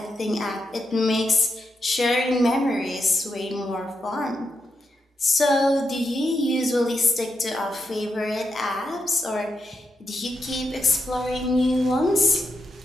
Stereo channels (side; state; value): both; normal; correlation 0.84